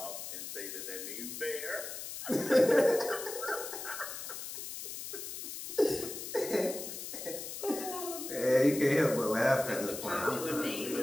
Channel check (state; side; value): noise; left; hiss, 8 dB below the sound